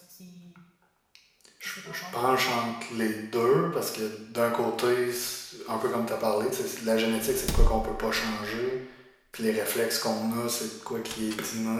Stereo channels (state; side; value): identical; both; correlation 1.00